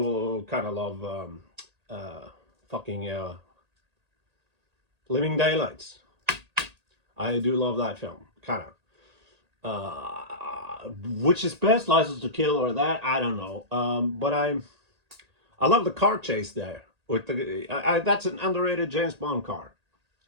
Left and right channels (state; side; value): late; left; 1.8 ms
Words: kind of love fucking Living Daylights. I do love that film, kind of. Which is best, License to Kill or that? I don't know. But I love the car chase there. With that's an underrated James Bond car,